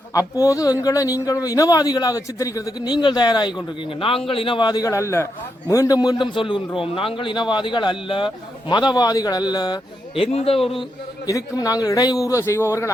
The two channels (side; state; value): both; normal; correlation 0.83